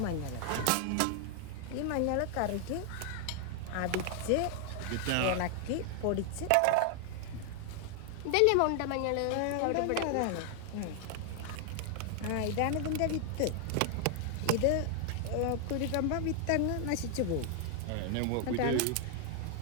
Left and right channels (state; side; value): different; both; correlation 0.00